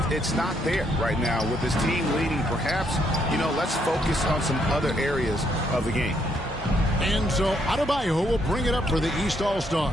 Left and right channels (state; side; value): normal; both; correlation 0.73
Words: it's not there right now with this team leading. Perhaps, you know, let's focus on some other areas of the game. And so Adebayo will bring it up for the East